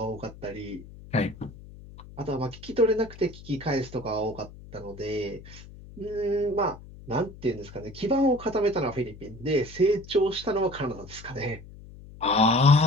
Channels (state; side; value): noise; left; hum, 17 dB below the sound